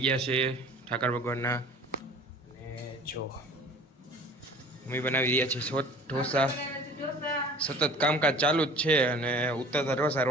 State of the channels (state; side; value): normal; both; correlation 0.46